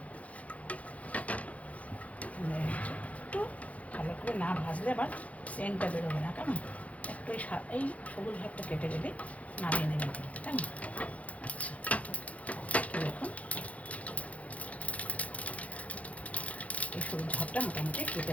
একটু ভালো করে না ভাজলে আবার সেন্টটা বেরোবে না। কেমন, একটু এই সবুজ ভাগটা কেটে গেলে নামিয়ে নেবেন কিন্তু। কেমন, আচ্ছা দেখুন এই সবুজ ভাগটা মোটামুটি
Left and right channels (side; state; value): right; late; 0.067 ms